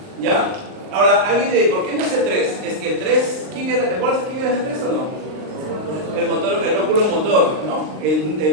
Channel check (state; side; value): late; left; 39 ms